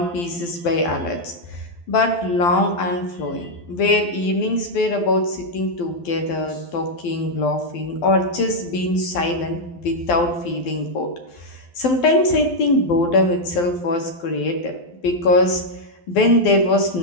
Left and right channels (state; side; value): late; right; 12 ms